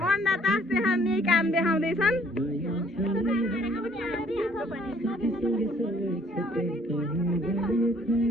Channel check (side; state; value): both; normal; correlation 0.61